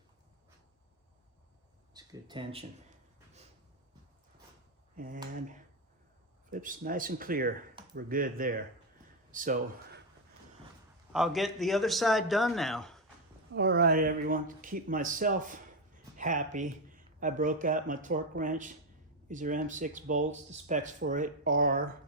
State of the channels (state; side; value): normal; both; correlation 0.08